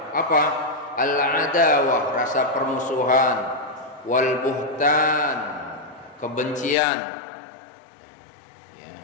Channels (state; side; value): drops out; right; at 6.8 s